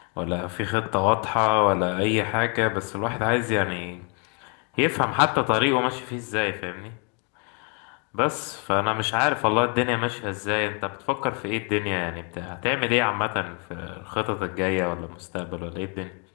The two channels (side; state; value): right; quieter; 36.2 dB